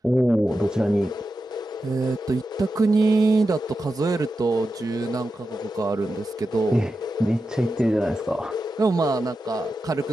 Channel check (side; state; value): both; normal; correlation 0.90